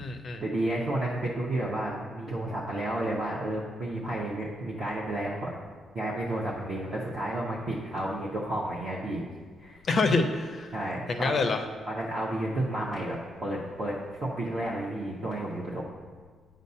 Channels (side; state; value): left; noise; rumble, 28 dB below the sound